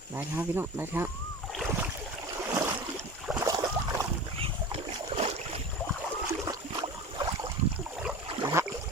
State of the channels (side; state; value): both; normal; correlation 0.34